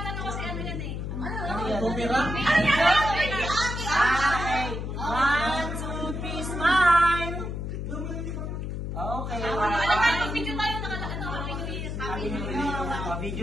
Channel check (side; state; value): left; noise; hum, 4 dB below the sound